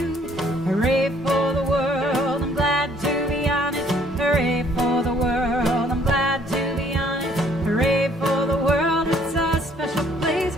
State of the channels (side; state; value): both; normal; correlation 0.62